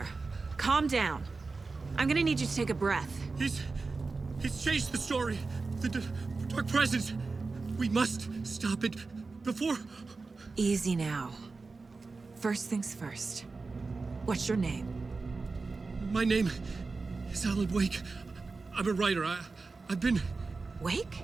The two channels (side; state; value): left; quieter; 4.0 dB